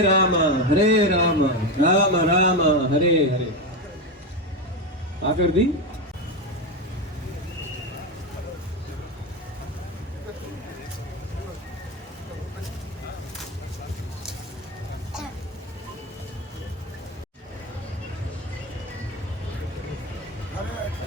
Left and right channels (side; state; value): both; normal; correlation 0.14